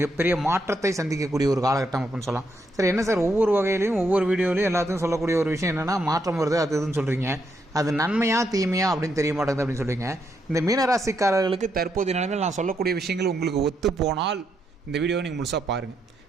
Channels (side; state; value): both; normal; correlation 0.78